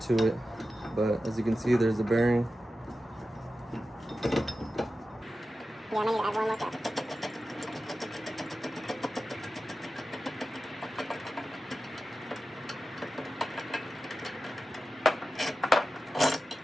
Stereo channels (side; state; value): both; normal; correlation 0.93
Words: to it. But as you can see, there's a bearing. Yeah, I might need to add one more cup.